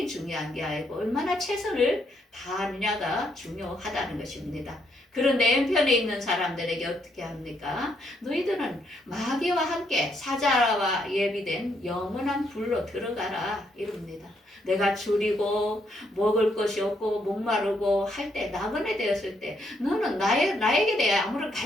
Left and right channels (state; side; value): normal; both; correlation 0.75